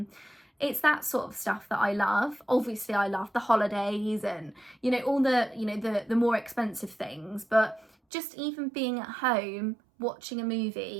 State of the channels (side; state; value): left; drops out; at 7.9 s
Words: It's that sort of stuff that I love. Obviously I love the holidays and, you know, all the, you know, the more expensive things, but just even being at home watching a